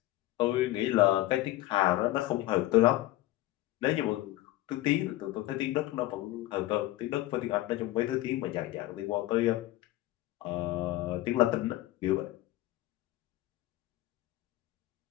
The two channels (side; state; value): right; quieter; 16.4 dB